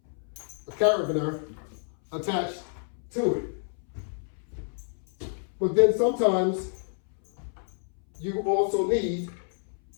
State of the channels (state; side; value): silent; right; 59 dB below the other